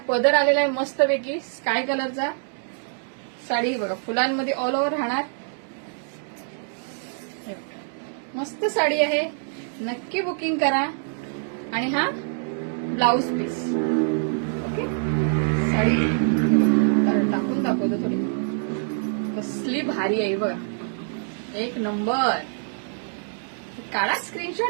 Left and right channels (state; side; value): silent; left; digital silence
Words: पदर आलेला आहे मस्तपैकी स्काय कलरचा. साडी बघा फुलांमध्ये ऑल ओव्हर राहणार. मस्त साडी आहे, नक्की बुकिंग करा. आणि हा ब्लाउज पीस. ओके, साडी टाकून दाखवतो थोडी, कसली भारी आहे बघा, एक नंबर. काढा